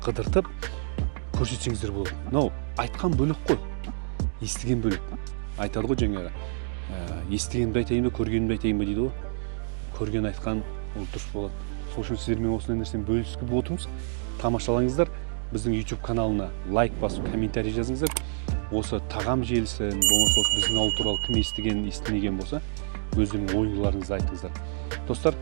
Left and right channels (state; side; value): silent; left; digital silence